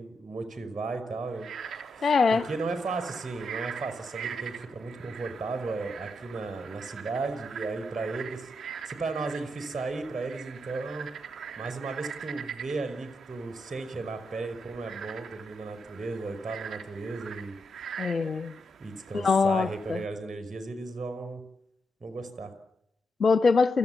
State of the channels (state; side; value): normal; both; correlation 0.84